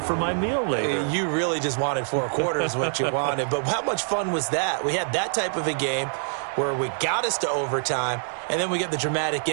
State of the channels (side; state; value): left; silent; digital silence